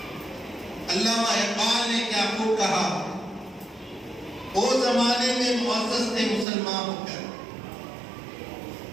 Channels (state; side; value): drops out; left; at 6.5 s